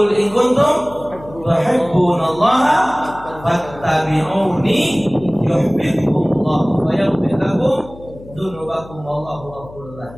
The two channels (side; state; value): left; noise; hum, 19 dB below the sound